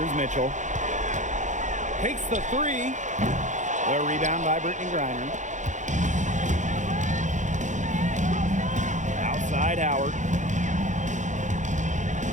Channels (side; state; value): left; late; 0.35 ms